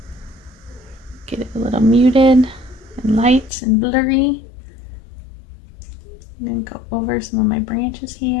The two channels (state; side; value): drops out; right; at 3.5 s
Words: muted and light and blurry. I'm going to go over some of my branches